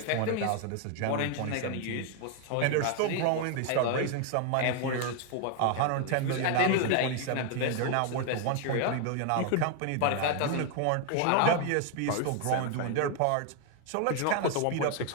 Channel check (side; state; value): both; different; correlation 0.01